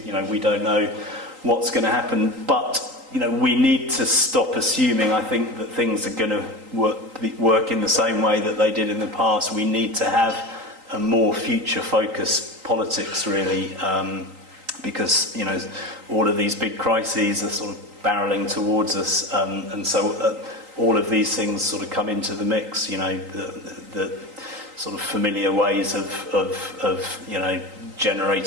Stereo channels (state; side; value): late; left; 3.8 ms